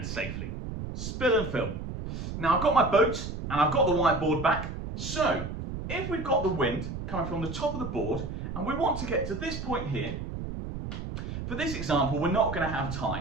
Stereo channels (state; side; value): noise; right; rumble, 6 dB below the sound